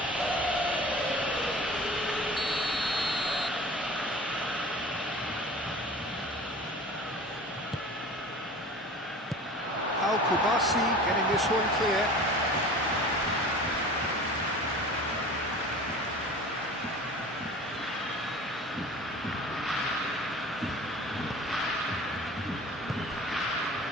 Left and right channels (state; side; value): normal; both; correlation 0.40